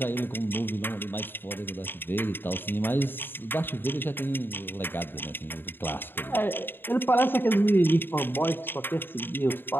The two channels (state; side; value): late; right; 0.098 ms